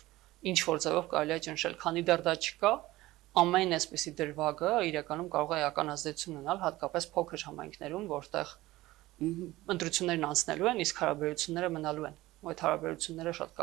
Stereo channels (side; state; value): left; quieter; 17.8 dB